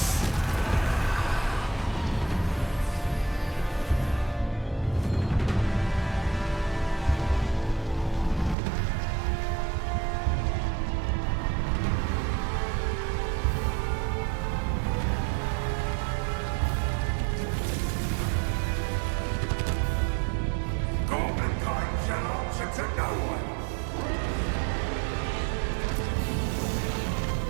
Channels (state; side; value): drops out; left; at 8.6 s